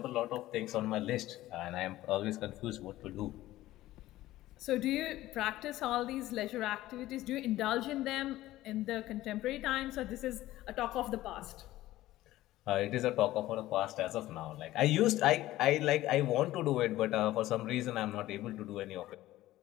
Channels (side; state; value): right; quieter; 15.8 dB